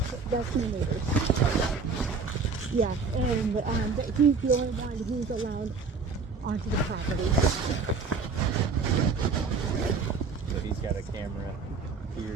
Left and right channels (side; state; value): left; quieter; 4.7 dB